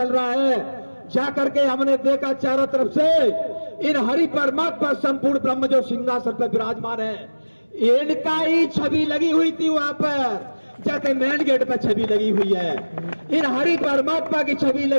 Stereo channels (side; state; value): both; inverted; correlation -1.00